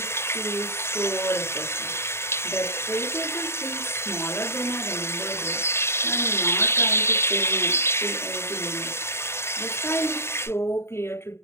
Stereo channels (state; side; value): late; right; 0.12 ms